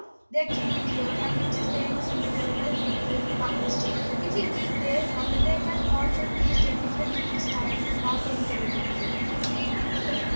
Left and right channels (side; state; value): both; inverted; correlation -1.00